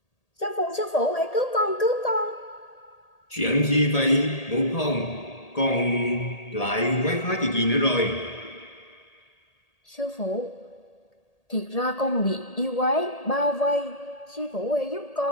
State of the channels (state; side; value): late; right; 1.8 ms